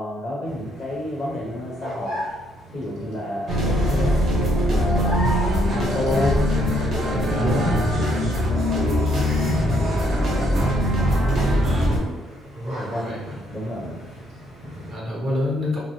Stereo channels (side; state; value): both; normal; correlation 0.71